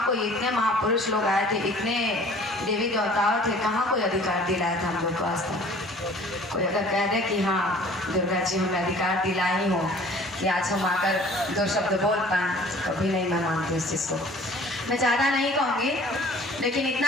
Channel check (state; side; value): normal; both; correlation 0.50